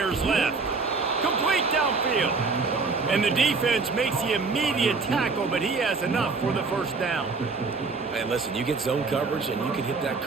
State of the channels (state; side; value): quieter; left; 4.3 dB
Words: left. Complete downfield. And the defense makes the immediate tackle, but he has enough for the first down. Man, listen, you get zone coverage and you can hit that